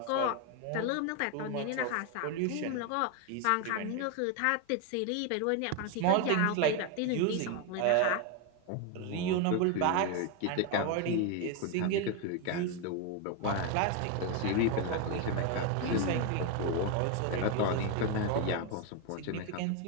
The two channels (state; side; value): different; both; correlation 0.01